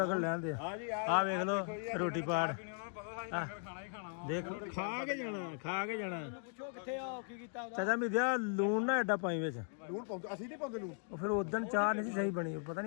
ਲੈਣ ਦੇ ਆ ਵੇਖ ਲੋ ਰੋਟੀ ਪਾੜ। ਖਾਣਾ ਹੀ ਖਾਣਾ ਵਾ। ਦੇਖ ਖਾ ਕੇ ਜਾਣਾ ਪੁੱਛੋ ਕਿੱਥੇ ਆ, ਕੀ ਕੀਤਾ ਚਾਚਾ ਮਿੱਧਿਆ ਲੂਣ ਨਾ ਐਡਾ ਪਾਈ ਵਿੱਚ। ਲੂਣ ਪਾਉਂਦੇ ਅਸੀਂ ਨਹੀਂ ਪਾਉਂਦੇ ਲੂਣ। ਉਹ ਫਿਰ ਉਦੋਂ ਚਾਹ ਨਹੀਂ ਸੀ ਸਹੀ ਬਣੀ, ਉਹ ਪਤਾ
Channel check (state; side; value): silent; right; 52 dB below the other